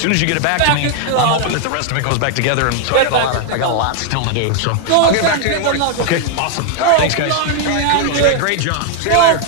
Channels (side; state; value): both; different; correlation 0.00